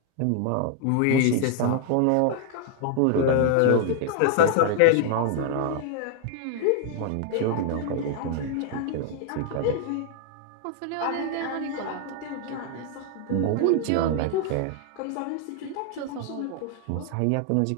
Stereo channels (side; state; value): both; different; correlation 0.00